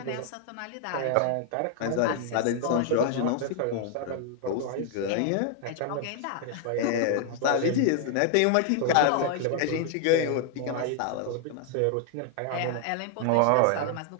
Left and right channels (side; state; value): both; different; correlation 0.00